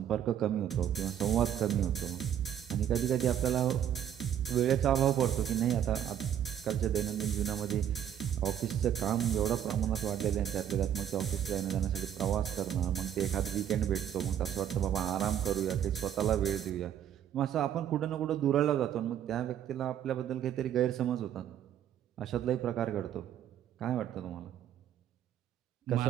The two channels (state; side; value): quieter; left; 10.0 dB